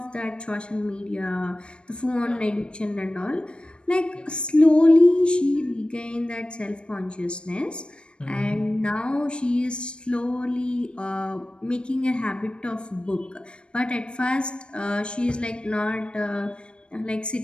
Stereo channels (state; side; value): late; right; 0.056 ms